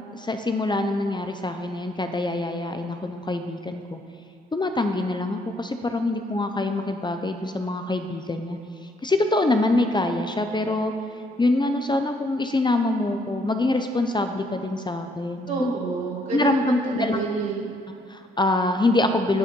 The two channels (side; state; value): both; normal; correlation 0.69